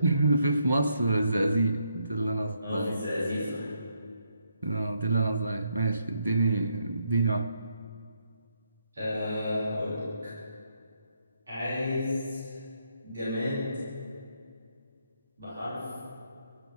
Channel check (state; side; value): inverted; both; correlation -0.76